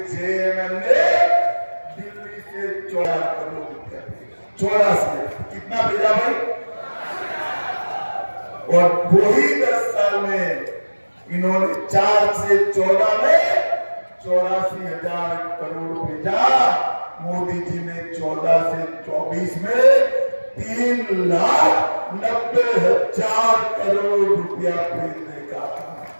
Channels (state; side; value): inverted; both; correlation -1.00